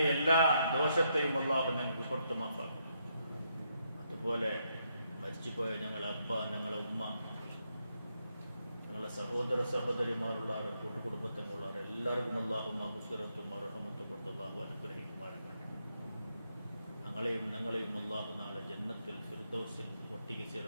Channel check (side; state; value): both; inverted; correlation -0.78